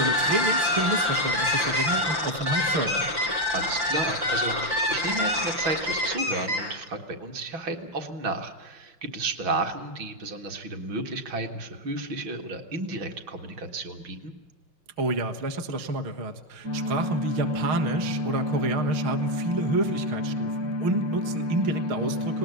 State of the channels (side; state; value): left; late; 5.8 ms